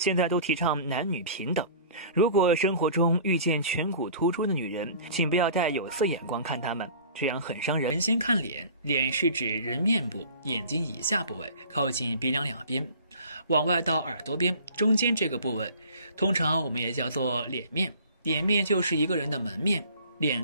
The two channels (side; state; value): both; inverted; correlation -0.46